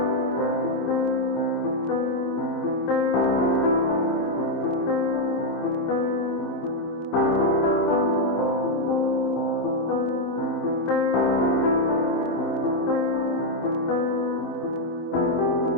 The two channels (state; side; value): late; right; 26 ms